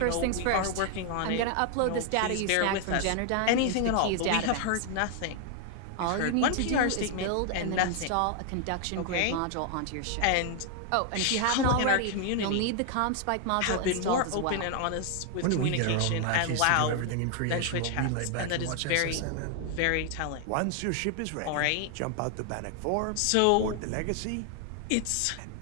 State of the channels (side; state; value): both; different; correlation 0.00